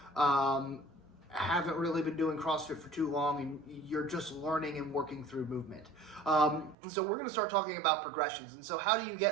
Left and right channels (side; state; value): left; drops out; at 6.8 s